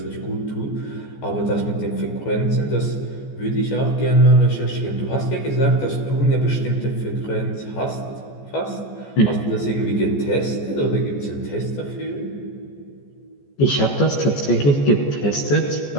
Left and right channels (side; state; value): right; late; 14 ms